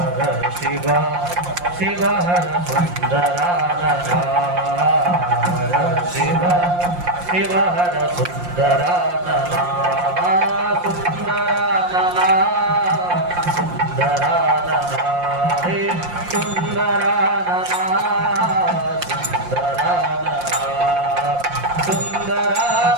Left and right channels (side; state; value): left; late; 5.7 ms